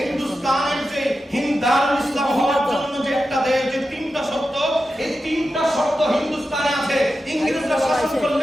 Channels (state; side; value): normal; both; correlation 0.91